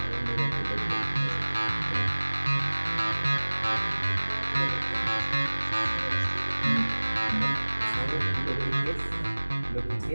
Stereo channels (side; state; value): both; inverted; correlation -1.00